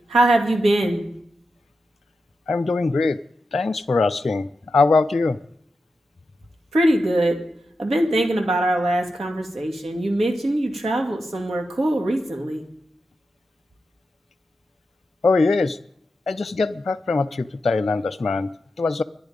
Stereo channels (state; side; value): normal; both; correlation 0.89